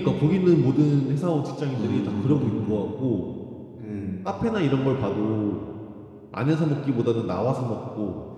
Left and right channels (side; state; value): both; identical; correlation 1.00